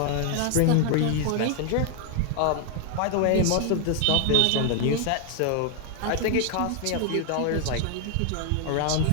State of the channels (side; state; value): both; different; correlation 0.01